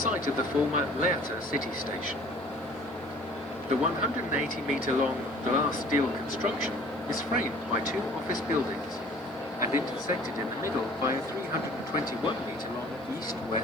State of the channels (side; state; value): right; noise; hiss, 29 dB below the sound